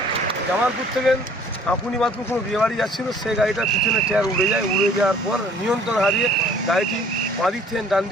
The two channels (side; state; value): both; normal; correlation 0.55